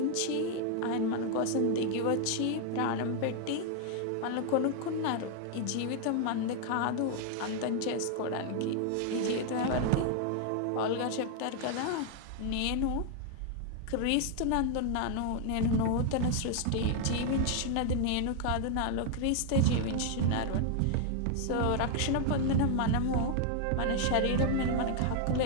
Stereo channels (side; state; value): both; different; correlation 0.00